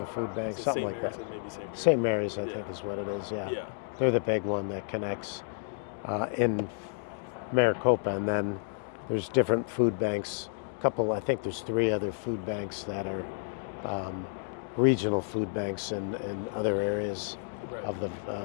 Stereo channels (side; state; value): right; silent; digital silence